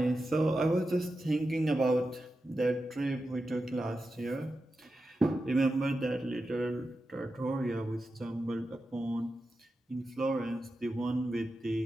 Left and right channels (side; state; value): both; normal; correlation 0.90